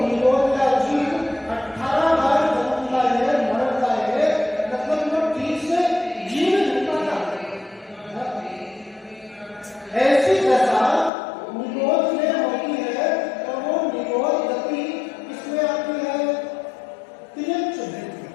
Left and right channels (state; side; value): drops out; right; at 11.1 s